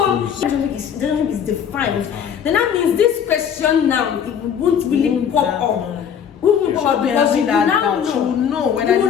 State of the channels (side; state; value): right; quieter; 8.1 dB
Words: relationship is defined. Then that means this question now it won't really pop up. We will pop because you now know whether